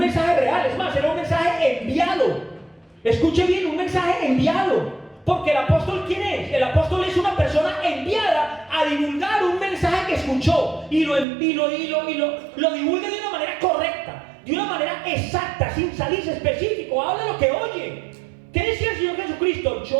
real. Es más, era un mensaje enviado. Escuche bien, un mensaje enviado. Porque el apóstol, ¿quién es? El apóstol es una persona enviada a divulgar un mensaje que escuchó y lo divulga de una manera correcta, de una manera exacta, sin salirse específico. Habla lo que oye. ¿Qué decía el Señor Jesucristo?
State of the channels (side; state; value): left; drops out; at 11.2 s